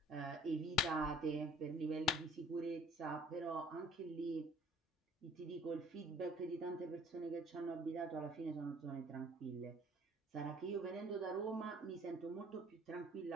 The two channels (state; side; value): normal; both; correlation 0.54